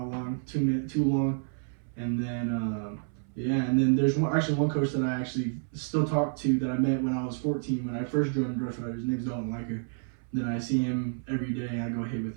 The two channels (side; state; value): left; silent; 58 dB below the other